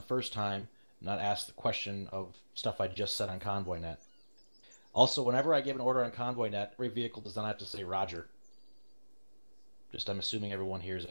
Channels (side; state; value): both; inverted; correlation -1.00